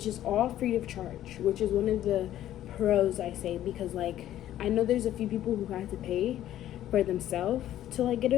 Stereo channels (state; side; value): quieter; right; 12.6 dB